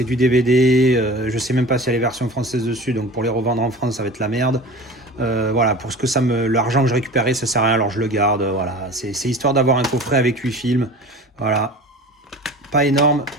du DVD. Je sais même pas s'il y a les versions françaises dessus, donc pour les revendre en France, ça va être la merde. Voilà, pour ce que l'argent que je récupérais, ça sert à rien, alors je le garde. Voilà, c'est histoire d'avoir un coffret avec 8 films. Voilà, pas énorme,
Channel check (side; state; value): both; normal; correlation 0.38